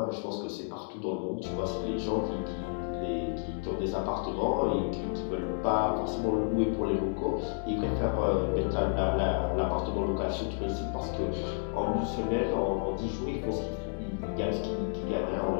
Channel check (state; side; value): silent; right; 57 dB below the other